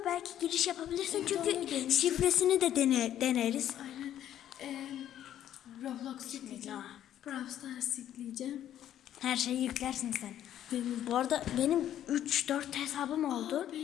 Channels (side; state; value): right; quieter; 11.3 dB